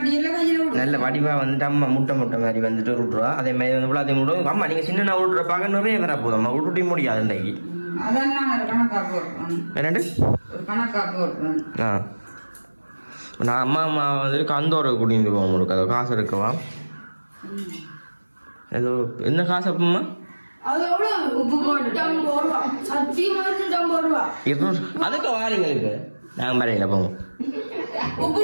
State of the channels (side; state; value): both; inverted; correlation -1.00